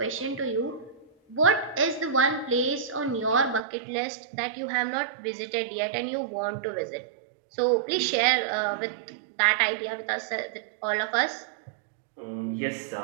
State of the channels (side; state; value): left; drops out; at 3.6 s